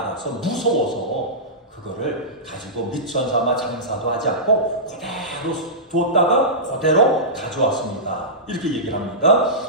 알아서 무서워서 그거를 가지고 미천 삼아 장사도 하지 않고 그대로 뒀다가 그대로 가져왔습니다. 이렇게 얘기를 합니다.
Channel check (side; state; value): both; normal; correlation -0.17